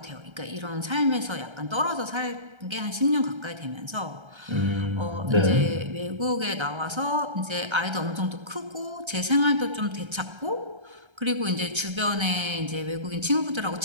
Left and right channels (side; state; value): left; late; 1.3 ms